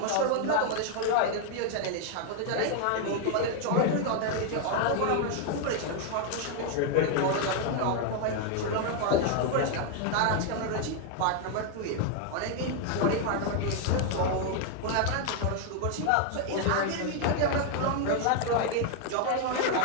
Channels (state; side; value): different; both; correlation 0.00